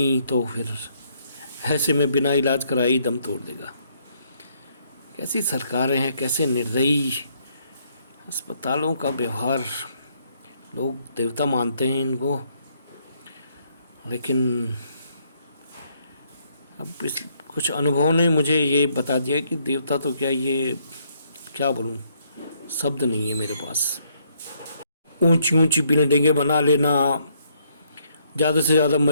तो फिर ऐसे में बिना इलाज कराए ही दम तोड़ देगा। कैसी सरकारें हैं, कैसे निर्दयी अस्पतालों का व्यवहार। लोग देवता मानते हैं इनको, लेकिन अब कुछ अनुभव ने मुझे ये बता दिया कि देवता तो क्या, ये क्या बोलूं, शब्द नहीं है मेरे पास। ऊंची ऊंची बिल्डिंगें बना लेना, ज़्यादा से ज़्यादा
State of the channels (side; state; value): both; inverted; correlation -0.70